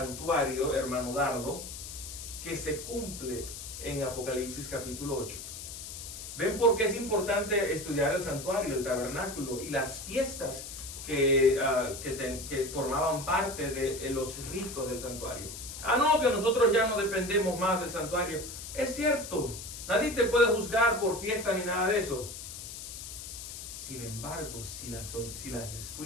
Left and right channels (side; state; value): left; noise; hiss, 10 dB below the sound